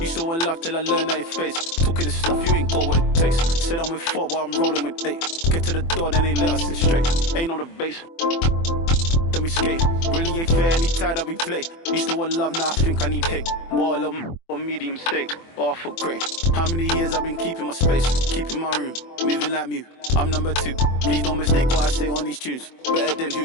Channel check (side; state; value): right; late; 24 ms